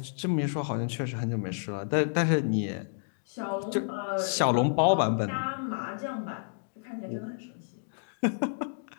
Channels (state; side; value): silent; right; digital silence